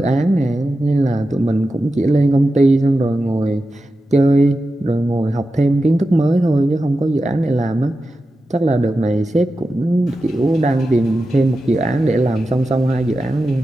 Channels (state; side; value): normal; both; correlation 0.91